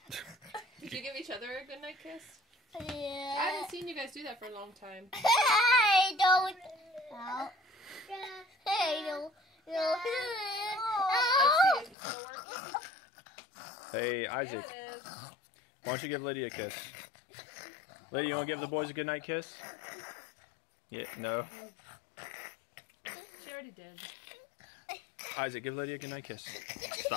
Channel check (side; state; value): right; drops out; at 12.0 s